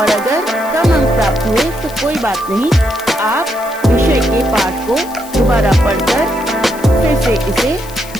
अगर कम अंक प्राप्त हुए तो कोई बात नहीं। आप विषय के पाठ को दोबारा पढ़कर फिर से इसे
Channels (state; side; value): noise; left; hiss, 17 dB below the sound